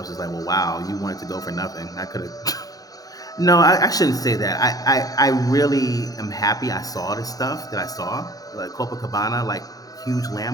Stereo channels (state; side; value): late; right; 0.18 ms